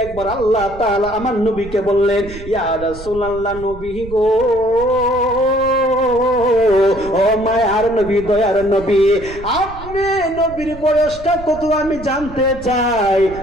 একবার আল্লাহ তাআলা আমার নবীকে বললেন, ইয়া রাসূলুল্লাহ, নবী গো, ও মায়ার নবী, দয়ার নবী, আপনি নবীর বয়সটা কত আমি জানতে চাই।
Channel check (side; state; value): right; noise; rumble, 15 dB below the sound